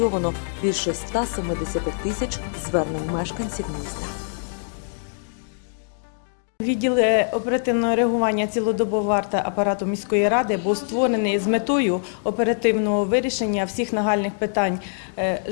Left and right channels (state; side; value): silent; right; digital silence